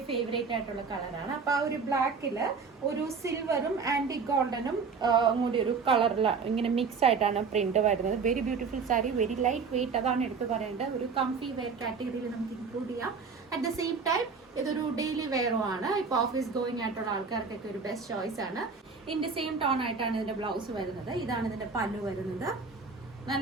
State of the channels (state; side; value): quieter; left; 5.1 dB